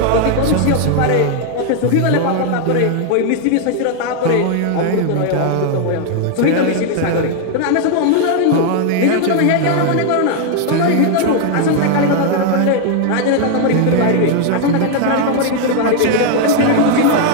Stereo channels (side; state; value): both; different; correlation 0.00